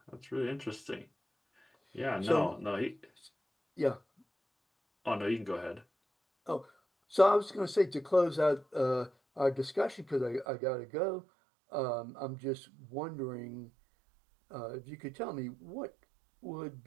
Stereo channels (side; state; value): left; drops out; at 10.5 s